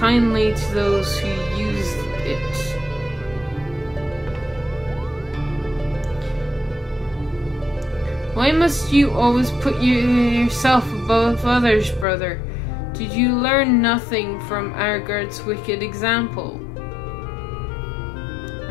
to those who use it. Why must you always put yourself above others, brother? Did you learn nothing from Argard's wicked example?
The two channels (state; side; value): drops out; right; at 12.1 s